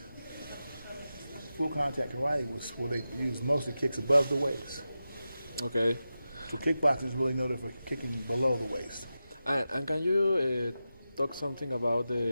Full contact karate was where they used mostly kicks above the waist. Okay. So kickboxing is really noted for kicking below the waist. And can you talk something about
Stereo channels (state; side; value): inverted; both; correlation -0.92